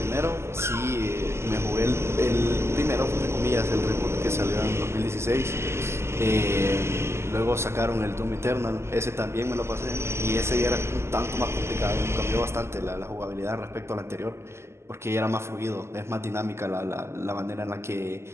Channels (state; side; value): late; left; 0.13 ms